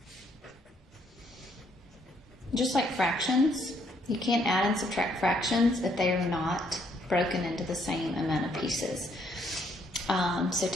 Just like fractions, you can't add and subtract fractions if they are not broken into the same amount of pieces. So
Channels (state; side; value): normal; both; correlation 0.69